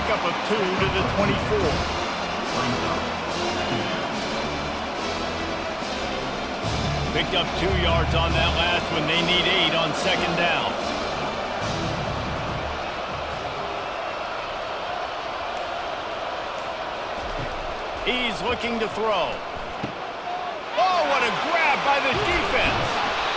of 2 to the 24. Picked up 2 yards on that last one. They need 8 on 2nd down. He's looking to throw. Oh, what a grab by the defense.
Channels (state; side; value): identical; both; correlation 1.00